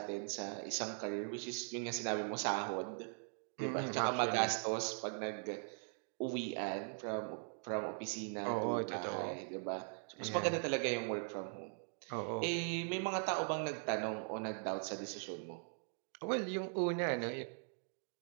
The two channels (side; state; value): left; silent; 51 dB below the other